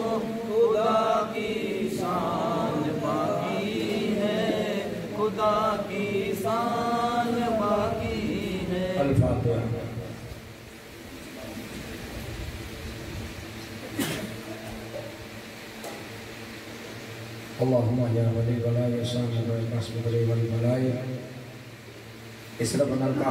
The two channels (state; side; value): identical; both; correlation 1.00